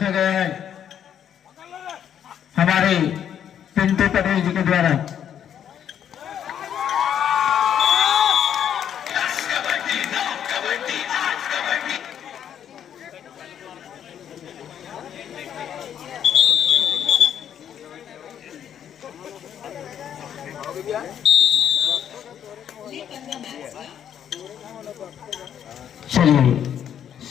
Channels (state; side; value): quieter; right; 9.3 dB